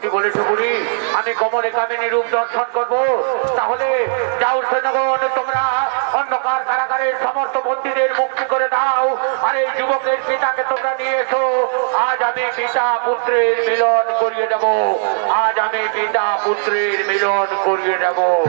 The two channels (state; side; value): silent; left; digital silence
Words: বলেছ বুড়ি, আমি কমলে কামিনী রূপ দর্শন করব। তাহলে যাও সৈন্যগণ, তোমরা অন্ধকার কারাগারের সমস্ত বন্দীদের মুক্তি করে দাও, আর এই যুবকের পিতাকে তোমরা নিয়ে এসো। আজ আমি পিতা পুত্রের মিলন করিয়ে দেব, আজ আমি পিতা পুত্রের মিলন করিয়ে দেব।